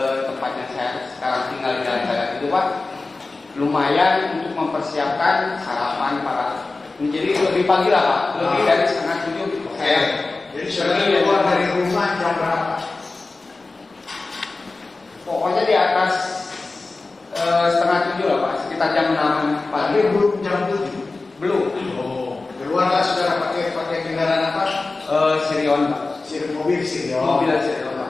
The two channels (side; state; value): right; quieter; 3.5 dB